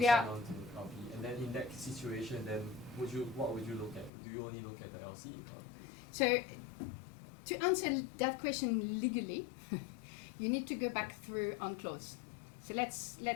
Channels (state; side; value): drops out; right; at 4.1 s